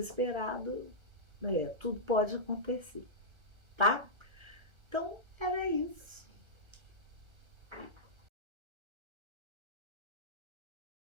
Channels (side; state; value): left; late; 1.3 ms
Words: tudo pode acontecer, tá? Então, era isso.